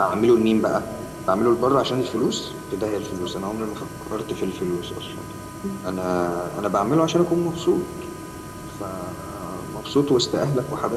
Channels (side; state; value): both; identical; correlation 1.00